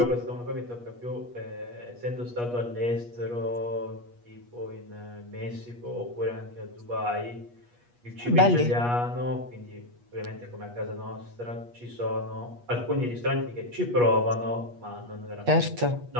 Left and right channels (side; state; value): left; late; 8.3 ms